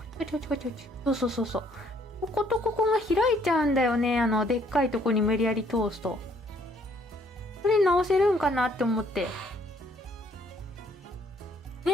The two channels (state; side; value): normal; both; correlation 0.64